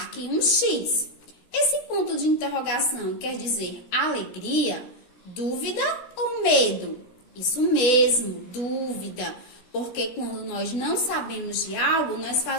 um X. Esse ponto de interrogação quer dizer alegria, dúvida ou medo? Isso mesmo, dúvida. Porque quando nós não sabemos de algo, nós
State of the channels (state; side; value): late; right; 17 ms